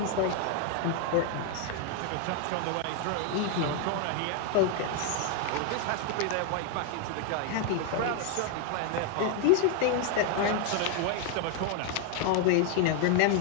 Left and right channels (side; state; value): both; different; correlation 0.00